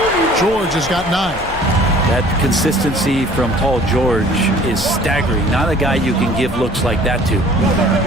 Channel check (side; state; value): left; noise; rumble, 15 dB below the sound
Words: George has got 9. That consistency from Paul George is staggering. Not a guy you can give looks like that to.